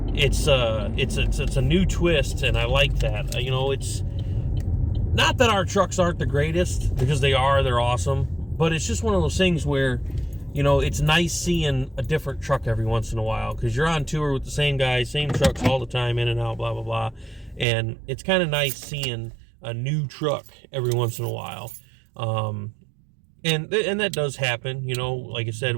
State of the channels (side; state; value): left; drops out; at 17.7 s